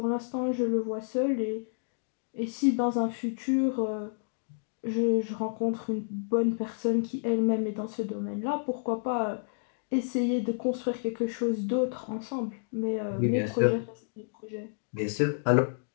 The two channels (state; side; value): silent; right; digital silence